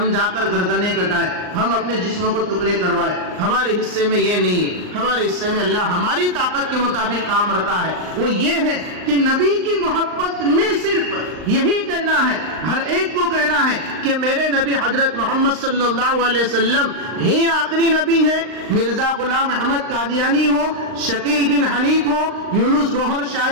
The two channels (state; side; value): late; left; 39 ms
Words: جا کر گردنیں کٹائیں، ہم اپنے جسموں کو ٹکڑے کروائیں. ہمارے حصے میں یہ نہیں ہے. ہمارے حصے میں اللہ ہماری طاقت کے مطابق کام رکھا ہے. وہ یہ ہے کہ نبی کی محبت میں صرف یہی کہنا ہے، ہر ایک کو کہنا ہے کہ میرے نبی حضرت محمد صلی اللہ علیہ وسلم ہی آخری نبی ہے. مرزا غلام احمد قادیانی ہو، شکیل بن حنیف ہو، یونس گوہر